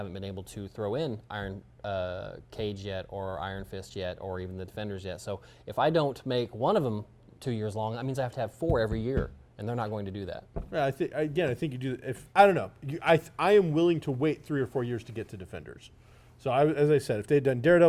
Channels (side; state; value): both; identical; correlation 1.00